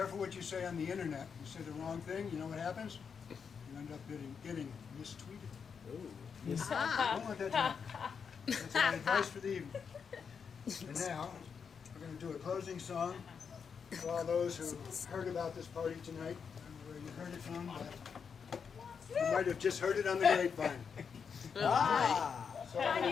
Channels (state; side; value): quieter; right; 6.4 dB